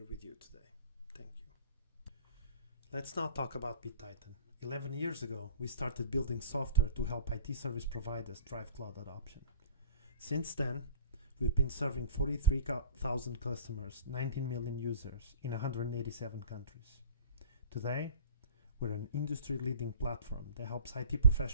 with you today. Thank you. Let's now talk about BitTitan. 11 years ago, we started building software to help IT service providers drive cloud adoption. Since then, we've been serving 43,000 customers, 19 million users in 187 countries. Today, we're an industry-leading platform that helps IT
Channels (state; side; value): inverted; both; correlation -0.45